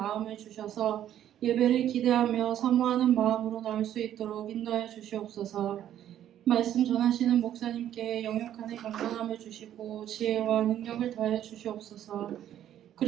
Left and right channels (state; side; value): quieter; left; 11.2 dB